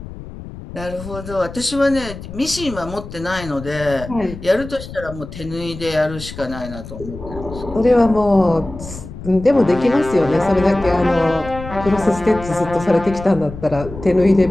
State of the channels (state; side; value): noise; left; rumble, 12 dB below the sound